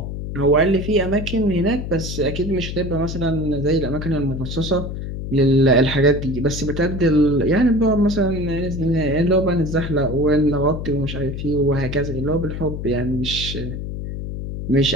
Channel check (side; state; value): left; noise; hum, 6 dB below the sound